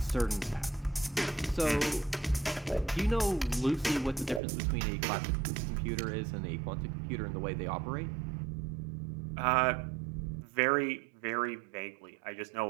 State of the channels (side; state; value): left; drops out; at 4.4 s